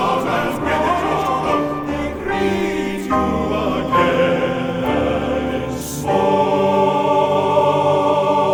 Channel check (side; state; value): both; identical; correlation 1.00